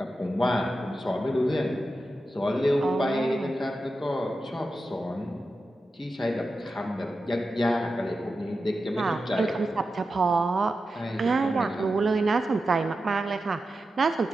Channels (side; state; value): both; normal; correlation 0.91